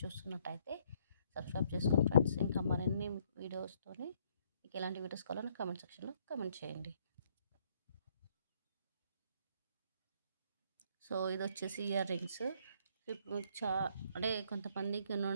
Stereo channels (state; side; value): inverted; both; correlation -0.67